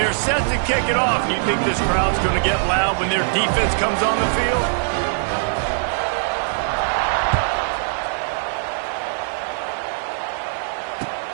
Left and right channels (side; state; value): left; silent; 65 dB below the other